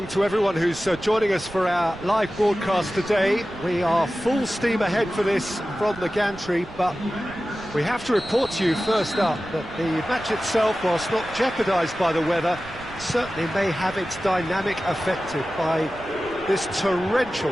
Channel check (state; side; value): noise; right; rumble, 18 dB below the sound